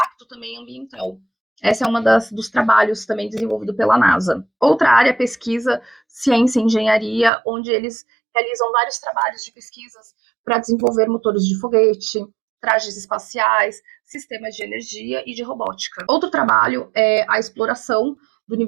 também ambiental. Essa é uma dos trabalhos também desenvolvido pela NASA. Outra área é pesquisa, ciência e engenharia, onde eles realizam vários trabalhos de pesquisas para desenvolver motores de foguete, trajes espaciais, sistemas de energia e de robótica. Outro trabalho é a exploração do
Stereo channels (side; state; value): left; drops out; at 7.3 s